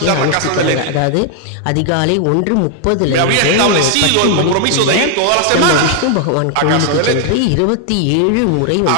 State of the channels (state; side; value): different; both; correlation 0.00